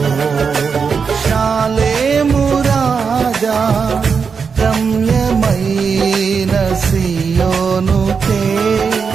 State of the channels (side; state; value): left; quieter; 5.7 dB